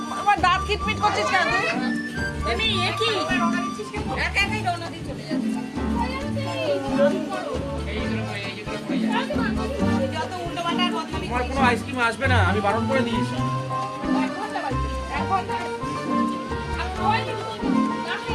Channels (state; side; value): identical; both; correlation 1.00